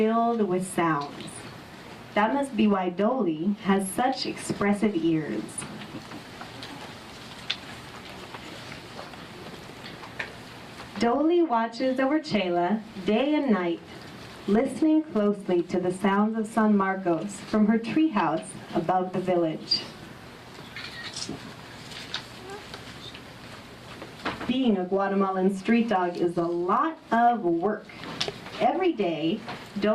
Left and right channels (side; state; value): both; identical; correlation 1.00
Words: with sounds. That must be why Doley has such expressive ears. Doley watches over Chela day and night, listening closely to the sounds of San Marcos from her treehouse above the village. Being a Guatemalan street dog is a lot of work. Every day,